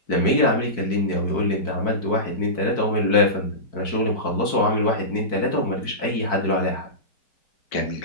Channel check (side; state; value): right; late; 4.5 ms